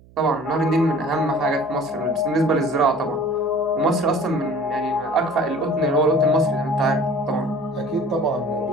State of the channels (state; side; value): noise; right; hum, 25 dB below the sound